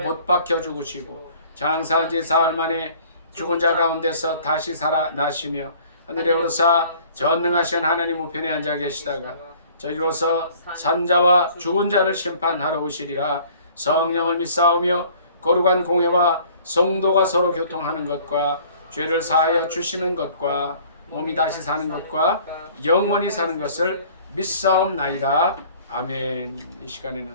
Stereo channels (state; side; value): inverted; both; correlation -0.53